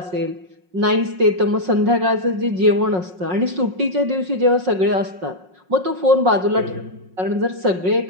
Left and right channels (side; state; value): left; late; 5.5 ms